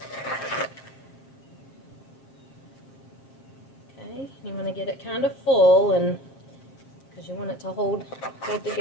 Okay, you want to get it kind of full, and because you want it to hold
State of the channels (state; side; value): late; right; 7.5 ms